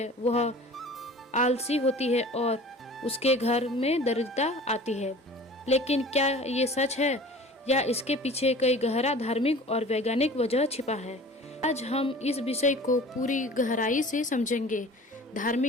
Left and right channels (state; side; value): normal; both; correlation 0.43